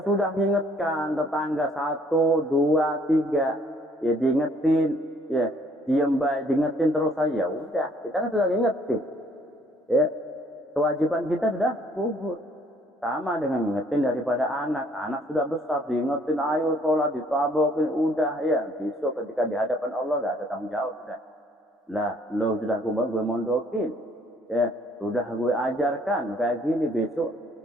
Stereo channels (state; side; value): normal; both; correlation 0.62